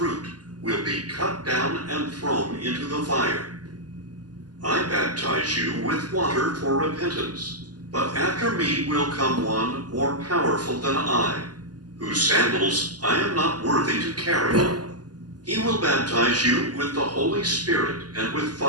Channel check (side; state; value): left; late; 0.70 ms